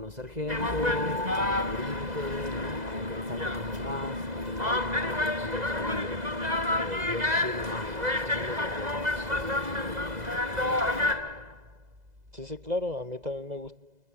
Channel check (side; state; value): left; late; 2.0 ms